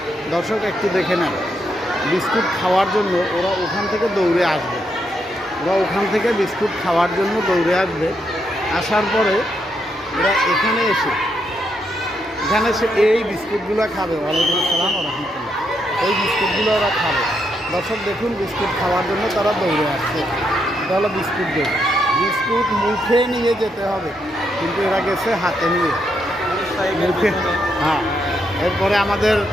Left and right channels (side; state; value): both; normal; correlation 0.79